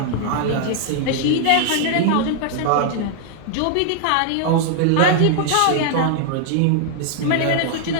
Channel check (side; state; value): both; different; correlation 0.00